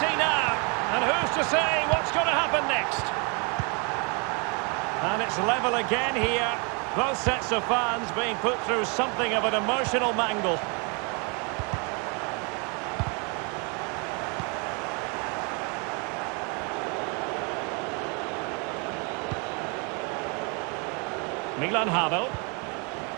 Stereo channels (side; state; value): left; quieter; 33.6 dB